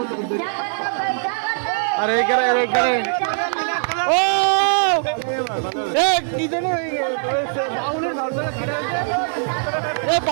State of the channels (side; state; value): left; silent; digital silence